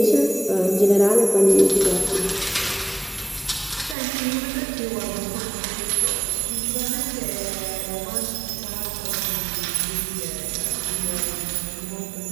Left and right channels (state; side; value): drops out; left; at 4.0 s